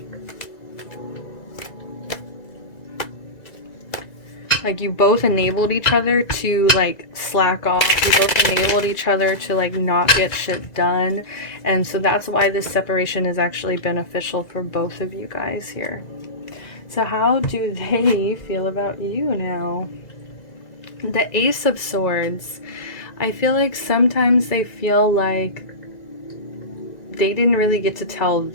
Like you both enabled each other to like slack off. You both enabled each other to like not get shit done. And so that's why this separation is actually beneficial for both of you guys here. So how do they feel about you now? The Ace of Swords. I feel like sometimes they feel like they didn't really get to tell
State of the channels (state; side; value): late; right; 1.9 ms